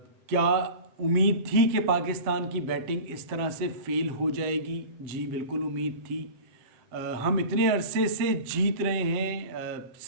क्या उम्मीद थी कि पाकिस्तान की बैटिंग इस तरह से फेल हो जाएगी? जी बिल्कुल उम्मीद थी। हम इतने अरसे से जीत रहे हैं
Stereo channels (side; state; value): left; late; 7.9 ms